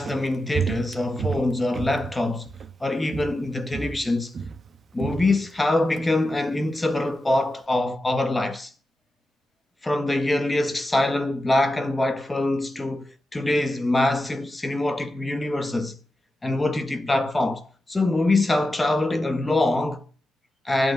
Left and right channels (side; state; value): both; normal; correlation 0.91